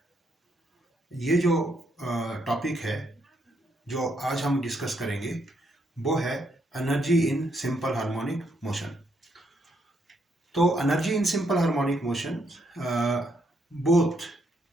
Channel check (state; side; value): normal; both; correlation 0.76